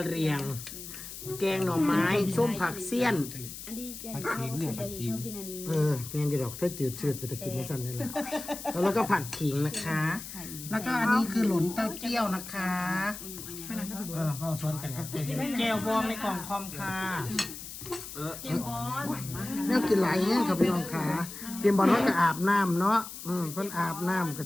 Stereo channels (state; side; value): noise; left; hiss, 11 dB below the sound